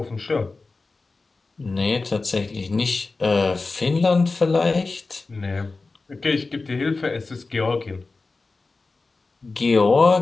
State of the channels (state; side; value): quieter; right; 3.7 dB